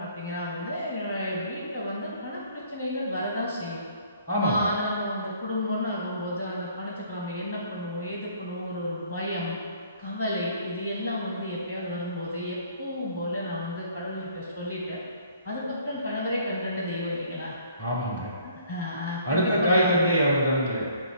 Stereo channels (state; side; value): inverted; both; correlation -0.57